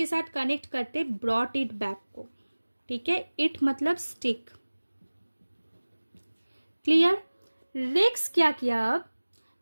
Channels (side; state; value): both; inverted; correlation -1.00